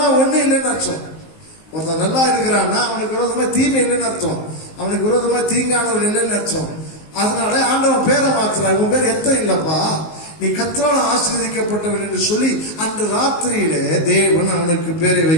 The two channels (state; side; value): late; right; 19 ms